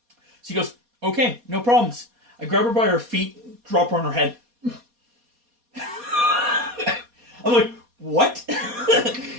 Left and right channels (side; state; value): left; late; 4.2 ms